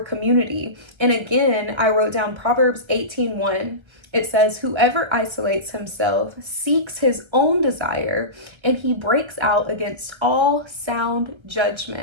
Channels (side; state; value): left; late; 1.3 ms